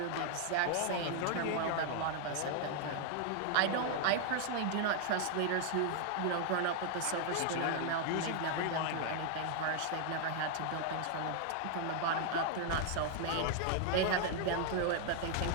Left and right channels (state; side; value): different; both; correlation 0.00